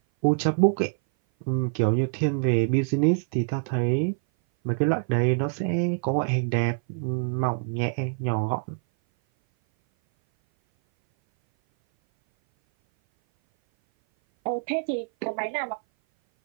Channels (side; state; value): left; silent; 58 dB below the other